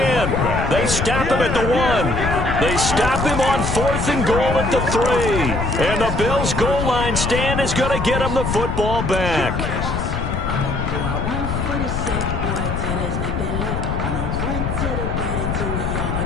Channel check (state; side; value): noise; left; rumble, 2 dB below the sound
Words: They stop him at the 1. They stop him on 4th and goal at the 3. And the Bills' goal line stand is going to get him the football back.